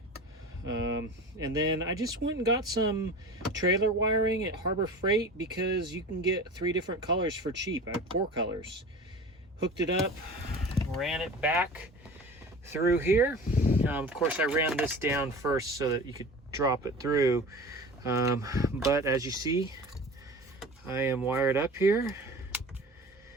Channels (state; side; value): normal; both; correlation 0.36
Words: And then I just went and got some trailer wiring at Harbor Freight because you can get 3 different colors for cheap. I have 4 colors. Hooked it up, ran it back through here. Of course, I ran this down first so that you could drop it through. But as you see, I am wired up here,